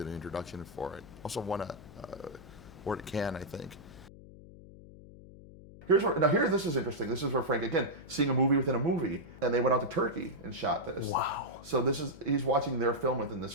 an introduction for it. Also won a award at Cannes, I think. This is interesting. This is where Frank, again, seeing a movie within a movie, and they went out to Turkey and shot this. Wow. So he's watching their film within this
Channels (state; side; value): noise; left; hum, 18 dB below the sound